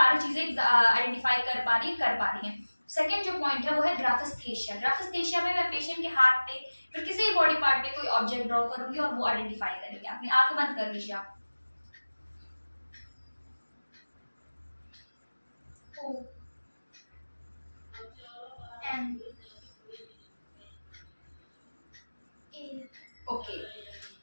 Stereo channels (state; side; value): inverted; both; correlation -1.00